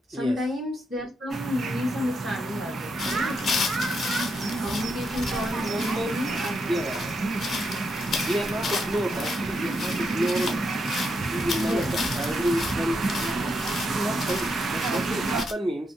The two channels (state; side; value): normal; both; correlation 0.81